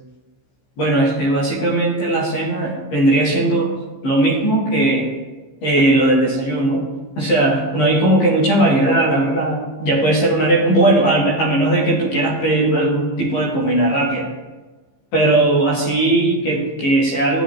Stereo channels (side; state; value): right; late; 15 ms